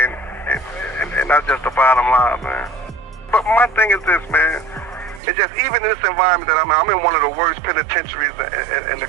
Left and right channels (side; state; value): left; drops out; at 5.2 s